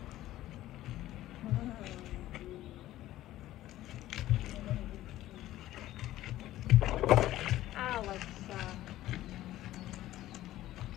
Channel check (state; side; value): quieter; right; 14.7 dB